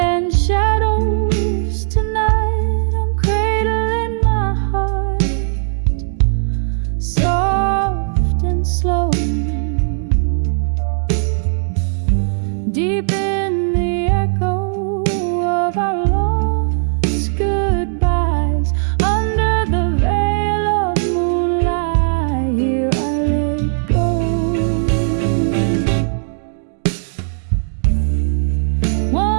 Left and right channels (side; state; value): left; silent; digital silence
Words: shadows tonight, I'm cradling my heart, soft and slow. Deep in the echo of our lost goodbyes, under the veil of moonlight, here I let go.